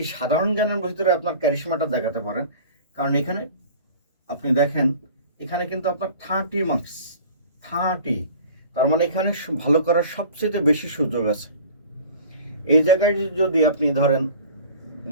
সাধারণ জ্ঞানের ভিতরে আপনার ক্যারিশমাটা দেখাতে পারেন, কারণ এখানে আপনি দেখেন, এখানে কিন্তু আপনার 30 মার্কস, 30, তার মানে এখানে ভালো করার সবচেয়ে বেশি সুযোগ আছে। এই জায়গায় যদি আপনি ধরেন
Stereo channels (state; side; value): inverted; both; correlation -0.43